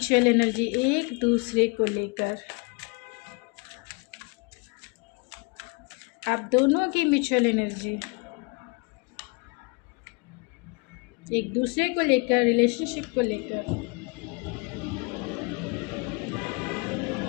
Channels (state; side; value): quieter; right; 30.7 dB